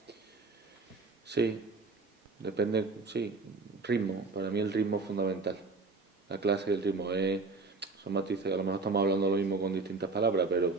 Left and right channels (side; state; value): left; quieter; 3.9 dB